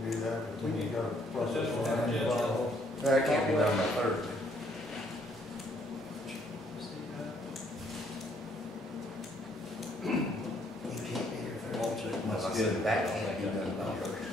do that, but we need to process Yeah. one. That can't be done by Thursday. You can't be here for I'll check my schedule. that. Can't be done by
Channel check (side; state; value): both; normal; correlation 0.67